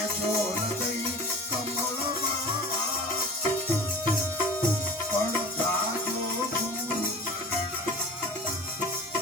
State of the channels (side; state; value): both; normal; correlation 0.38